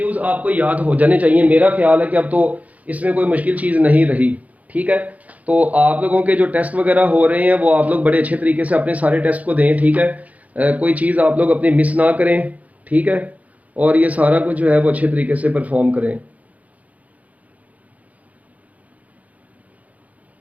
आपको याद हो जाने चाहिए। मेरा ख्याल है कि अब तो इसमें कोई मुश्किल चीज नहीं रही, ठीक ठीक है। तो आप लोगों के जो टेस्ट वगैरह हो रहे हैं वो आप लोग बड़े अच्छे तरीके से अपने सारे टेस्ट को दें, ठीक है। कोई चीज़ आप लोग अपनी मिस ना करें, ठीक है, और ये सारा कुछ जो है वो अच्छे तरीके से परफॉर्म करें।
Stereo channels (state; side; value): late; left; 0.072 ms